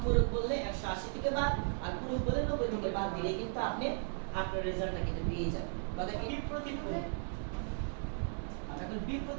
বললে 180 থেকে বাদ, আর পূরক বললে 90 থেকে বাদ দিলে কিন্তু আপনি আপনার রেজাল্টটা কিন্তু পেয়ে যাবেন। কথা কি? বিপরীত কোণ। আমরা এখন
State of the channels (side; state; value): left; silent; 54 dB below the other